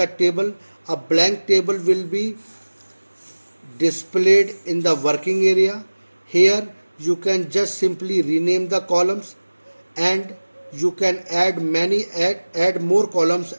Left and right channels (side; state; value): both; inverted; correlation -1.00